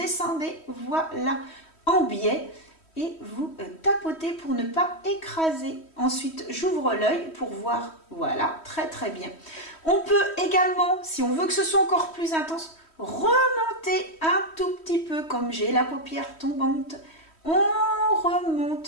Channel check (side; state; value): right; late; 3.1 ms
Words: voilà, en biais. Et vous tapotez pour ne pas écraser. Ensuite, j'ouvre l'œil pour voir. Voilà, très bien. On peut également, si on veut que ce soit encore plus intense, remonter un tout petit peu, comme j'ai la paupière tombante. On